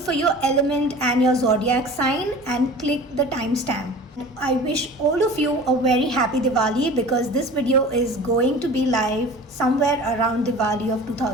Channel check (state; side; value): normal; both; correlation 0.40